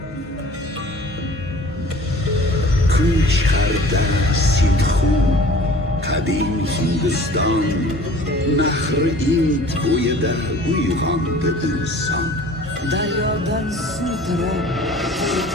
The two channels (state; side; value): normal; both; correlation 0.47